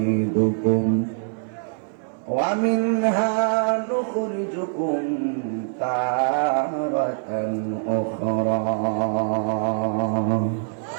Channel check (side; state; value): left; silent; 62 dB below the other